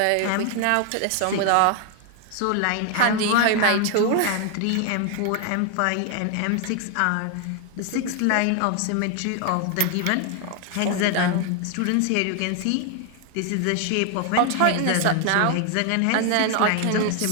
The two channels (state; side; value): different; both; correlation 0.00